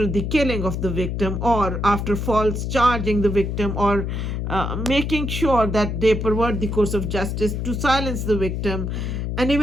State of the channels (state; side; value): noise; left; hum, 2 dB below the sound